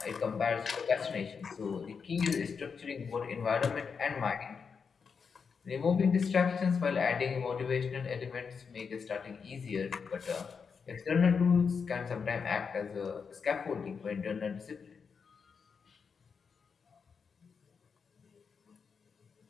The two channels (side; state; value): right; quieter; 5.8 dB